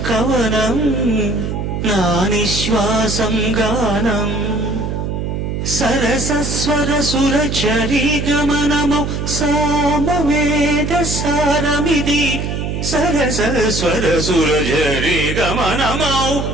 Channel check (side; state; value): right; noise; hum, 3 dB below the sound